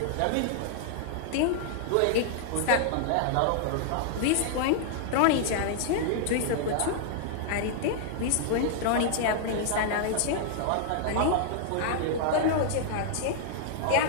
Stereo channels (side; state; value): both; different; correlation -0.01